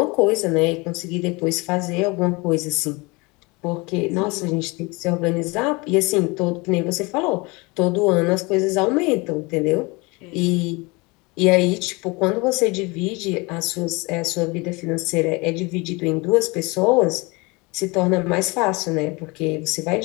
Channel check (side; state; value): right; quieter; 26.1 dB